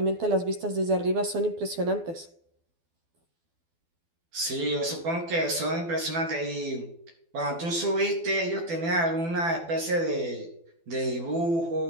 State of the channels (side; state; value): left; late; 12 ms